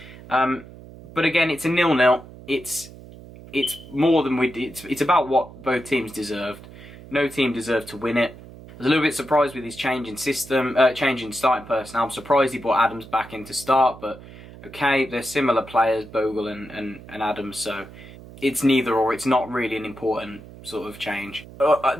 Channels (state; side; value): noise; right; hum, 18 dB below the sound